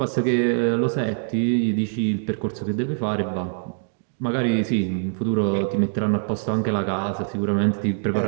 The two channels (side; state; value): left; silent; digital silence